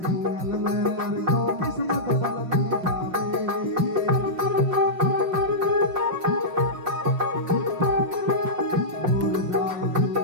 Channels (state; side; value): late; left; 6.2 ms